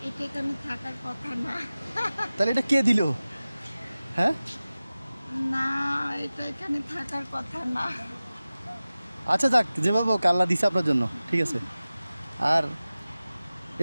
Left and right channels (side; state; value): both; inverted; correlation -0.97